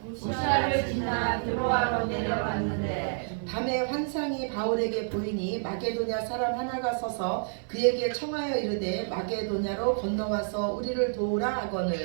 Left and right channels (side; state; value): left; silent; digital silence